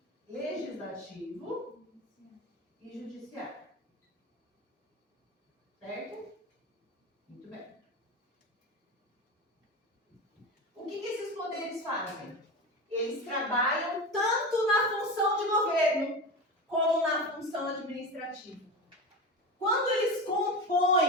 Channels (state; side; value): normal; both; correlation 0.24